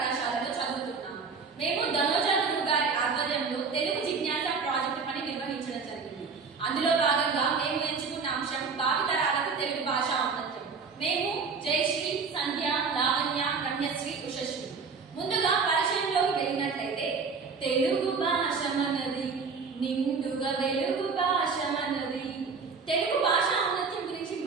చదువుతున్నాము. మేము ధనోజా గురువు గారి ఆధ్వర్యంలో తెలుగు జిజ్ఞాస ప్రాజెక్టు పని నిర్వహించడం జరిగింది. అందులో భాగంగా మేము ఎంచుకున్న అంశం భావితరాలకు తెలుగు భాష ఔన్నత్యం. మేము జయశ్రీ, సంధ్య, లావణ్య, రమ్యశ్రీ, ఉషశ్రీ. ముందుగా పరిచయంలోకి వెళ్ళినట్లయితే తెలుగు భాష మనది, నిండుగా వెలుగు భాష మనది. తెలుగు భాష ఔన్నత్యం గురించి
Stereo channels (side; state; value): left; quieter; 5.1 dB